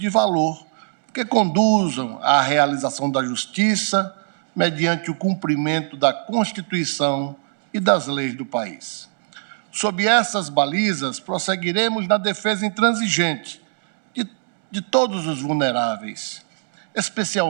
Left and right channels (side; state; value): left; silent; digital silence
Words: valor que conduzam à realização da justiça mediante o cumprimento da Constituição e das leis do país. Sob essas balizas, prosseguiremos na defesa intransigente de todos os vulneráveis,